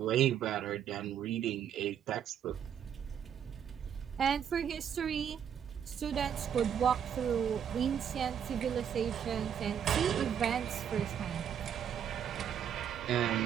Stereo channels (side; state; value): left; quieter; 8.7 dB